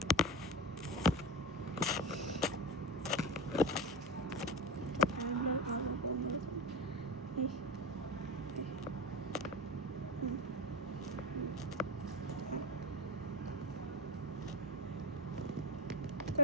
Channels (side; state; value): both; normal; correlation 0.17